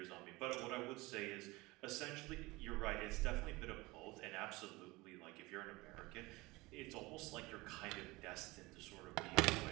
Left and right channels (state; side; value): quieter; left; 22.0 dB